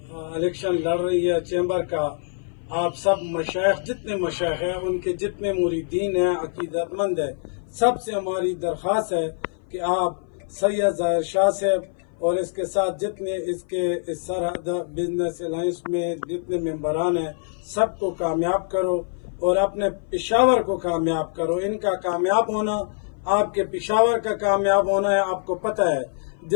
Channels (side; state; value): right; silent; 57 dB below the other